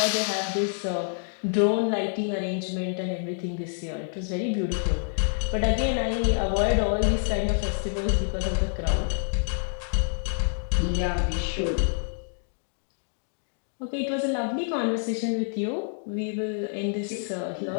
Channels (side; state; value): right; silent; digital silence